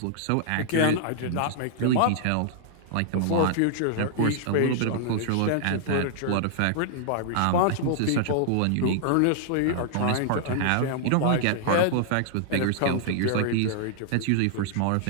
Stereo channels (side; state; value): both; different; correlation -0.01